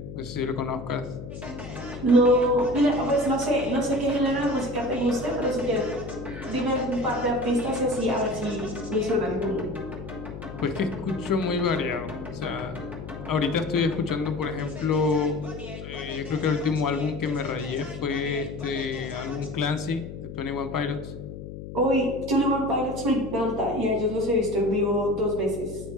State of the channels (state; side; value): noise; left; hum, 11 dB below the sound